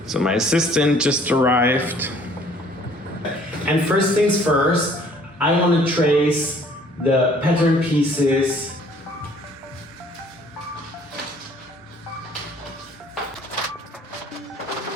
So my assistant just arrived. And first things first, I want to trace the pattern pieces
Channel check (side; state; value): both; normal; correlation 0.57